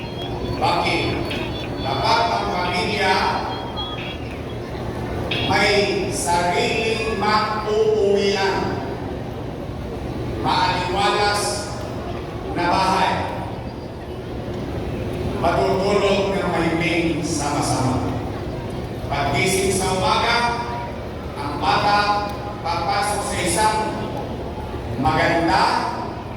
Bakit? Dapat ang pamilya may sariling mag-uuwian, maaliwalas na bahay, matutulog ng mahiming sama-sama. Paggising sa umaga, ang bata papasok sa isang maganda,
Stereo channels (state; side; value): identical; both; correlation 1.00